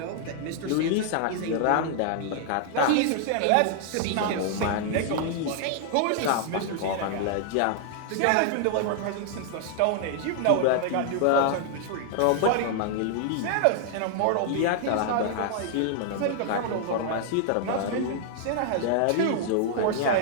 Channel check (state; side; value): different; both; correlation 0.00